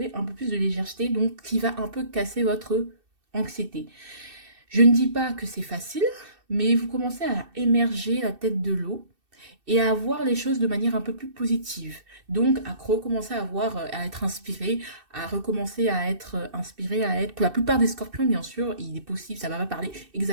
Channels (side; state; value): left; late; 2.6 ms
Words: un peu plus de légèreté, donc qui va un peu casser votre anxiété. Je ne dis pas que c'est facile, mais vous commencez à émerger la tête de l'eau et à voir les choses de manière un peu plus positive. Donc à recommencer à voir, à être inspiré, à recommencer à être inspiré, à être... Pour la plupart des scorpions, bien sûr, il est possible, ça va pas parler